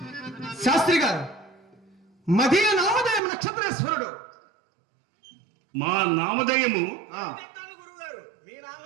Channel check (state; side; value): drops out; left; at 3.2 s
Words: శాస్త్రి గారు, మదీయ నామధేయం నక్షత్రేశ్వరుడు. మా నామధేయము గురుగారు, మీ